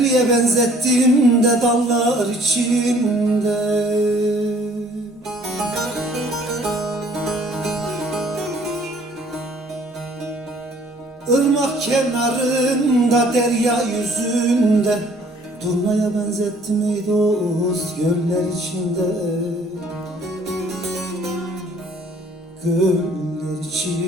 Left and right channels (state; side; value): normal; both; correlation 0.57